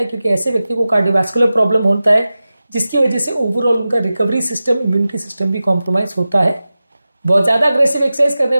है, क्योंकि ऐसे व्यक्ति को कार्डियोवैस्कुलर प्रॉब्लम होता है जिसकी वजह से ओवरऑल उनका रिकवरी सिस्टम, इम्यूनिटी सिस्टम भी कॉम्प्रोमाइज होता है। बहुत ज्यादा अग्रेसिव एक्सरसाइज करने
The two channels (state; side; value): inverted; both; correlation -0.95